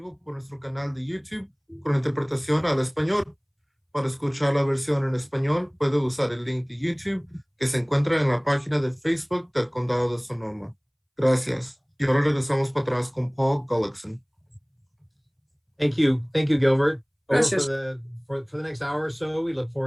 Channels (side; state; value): both; identical; correlation 1.00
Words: por nuestro canal de YouTube con interpretación al español. Para escuchar la versión en español, puede usar el link de YouTube que se encuentra en la página de Facebook del Condado de Sonoma. Gracias. Y ahora regresamos para atrás con Paul Gullickson. Thank you, Gilbert. Gracias. For the next hour or so, we look